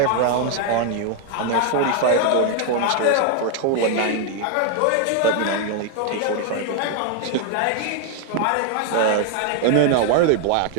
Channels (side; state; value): both; different; correlation 0.00